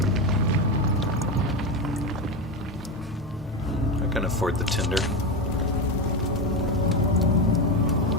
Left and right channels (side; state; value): both; normal; correlation 0.15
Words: I can afford the tinder.